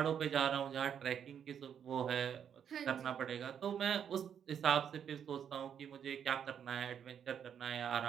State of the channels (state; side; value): quieter; left; 8.4 dB